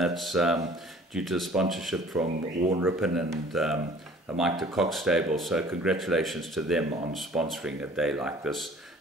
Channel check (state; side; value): normal; both; correlation 0.51